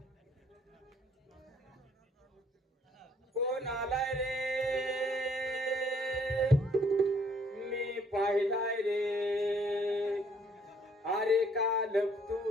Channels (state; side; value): normal; both; correlation 0.64